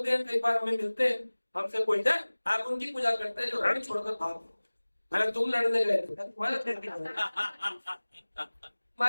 हैं कई बार हमें मिलते हैं, हमसे पूछते हैं आप उनकी पूजा करते हैं जो रण छोड़कर भाग। अगर तुम लड़ने गए थे तुम्हारा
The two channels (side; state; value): both; inverted; correlation -1.00